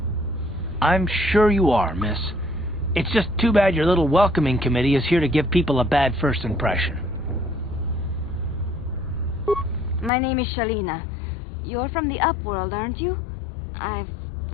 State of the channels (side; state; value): right; drops out; at 10.1 s